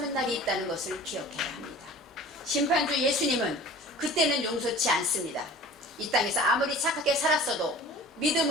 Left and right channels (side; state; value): both; normal; correlation 0.43